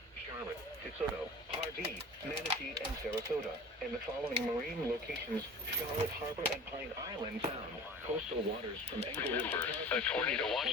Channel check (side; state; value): both; normal; correlation 0.39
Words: Charlotte, DeSoto, Pardee, Manatee, and Sarasota, and the following marine locations: Charlotte Harbor and Pine Island Sound. Coastal waters from Englewood to a tornado